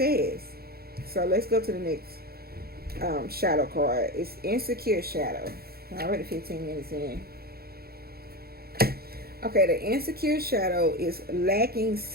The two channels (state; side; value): late; left; 0.45 ms